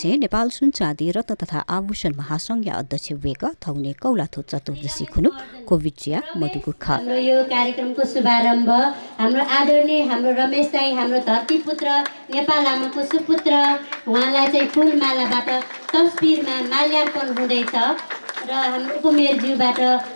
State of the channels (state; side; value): inverted; both; correlation -1.00